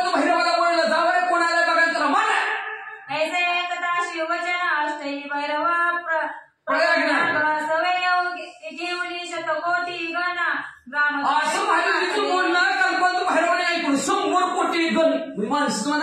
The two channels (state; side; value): identical; both; correlation 1.00